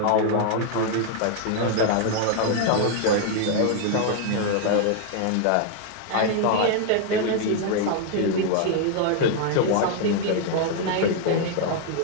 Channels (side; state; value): both; different; correlation 0.00